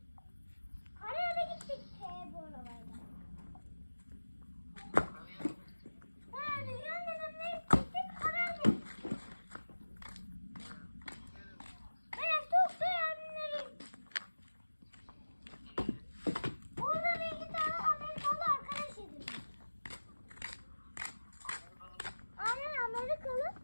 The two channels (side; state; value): both; inverted; correlation -1.00